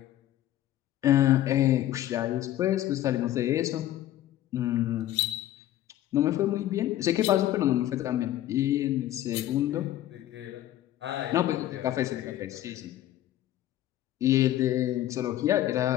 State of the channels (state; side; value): quieter; right; 13.5 dB